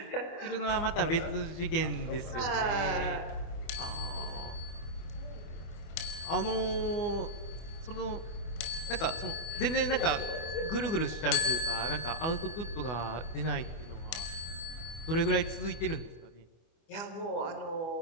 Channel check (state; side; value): late; right; 24 ms